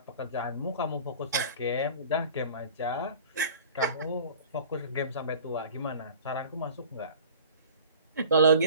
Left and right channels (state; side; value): inverted; both; correlation -0.43